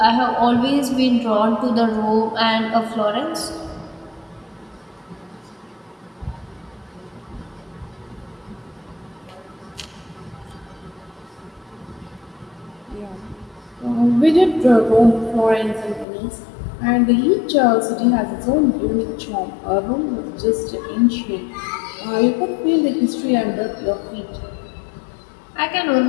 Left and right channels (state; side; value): drops out; right; at 16.1 s